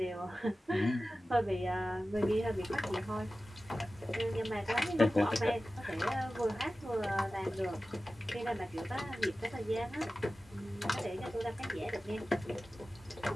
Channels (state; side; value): normal; both; correlation 0.95